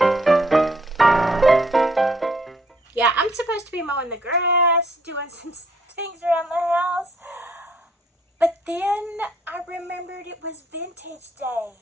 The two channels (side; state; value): both; normal; correlation 0.65